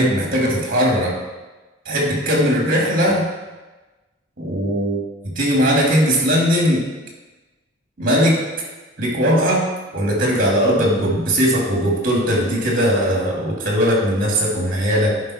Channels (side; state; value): both; normal; correlation 0.39